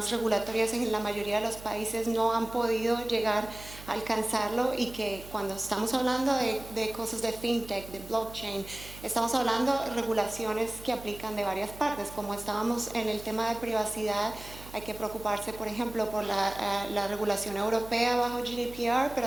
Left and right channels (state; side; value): noise; right; hum, 16 dB below the sound